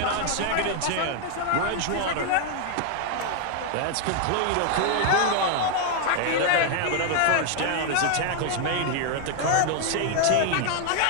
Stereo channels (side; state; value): both; different; correlation 0.00